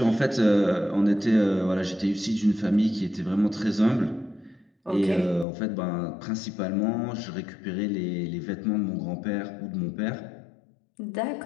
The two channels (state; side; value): drops out; right; at 5.5 s